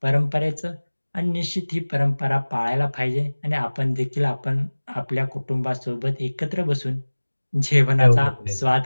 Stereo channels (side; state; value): both; inverted; correlation -1.00